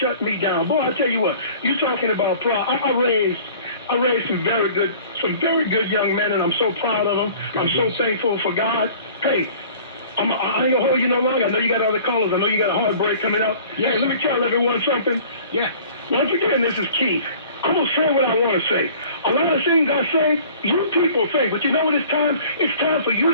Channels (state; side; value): inverted; both; correlation -0.48